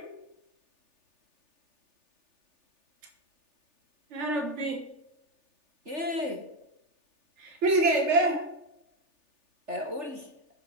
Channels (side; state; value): left; late; 3.4 ms